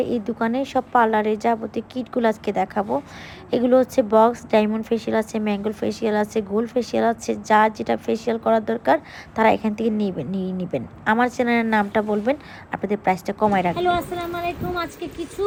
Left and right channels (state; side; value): identical; both; correlation 1.00